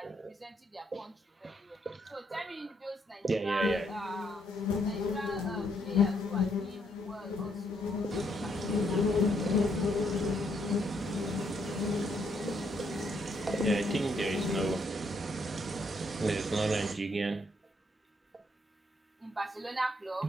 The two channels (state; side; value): normal; both; correlation 0.73